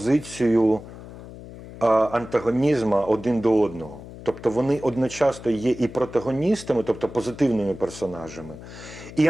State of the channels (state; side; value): noise; left; hum, 15 dB below the sound